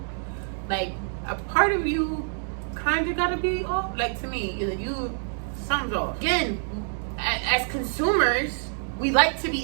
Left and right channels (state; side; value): silent; left; digital silence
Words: Like, a part of you kind of gotta be off. Like, to me, something's off. Again, as consumers, we like to